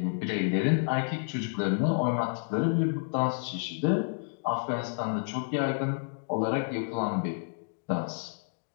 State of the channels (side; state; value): right; silent; digital silence